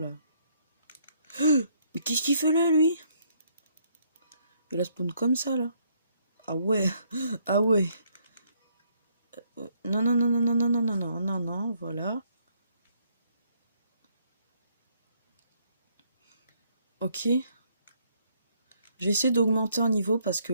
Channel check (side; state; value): both; inverted; correlation -0.69